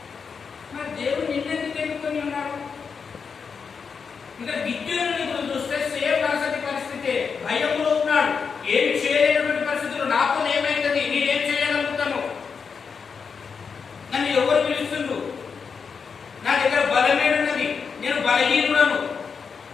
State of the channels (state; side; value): quieter; right; 5.8 dB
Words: మరి దేవుడు నిన్నెందుకు ఎన్నుకొని ఉన్నాడు? ఇంకా గిద్యోనుని గురించి చూస్తే సేమ్ పరిస్థితి, భయంలో ఉన్నాడు. ఏమి చేయలేనటువంటి పరిస్థితులు. నాతో ఏమైతుంది, నేనేం చేయగలుగుతాను, నన్ను ఎవరు పిలుస్తుండ్రు, నా దగ్గర బలమేడున్నది, నేను బలహీనుడను,